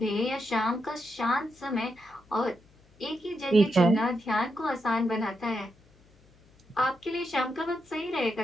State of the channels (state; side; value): noise; left; hum, 30 dB below the sound